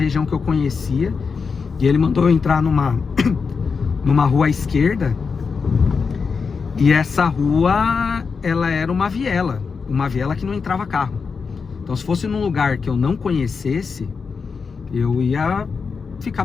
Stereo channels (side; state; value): right; quieter; 5.3 dB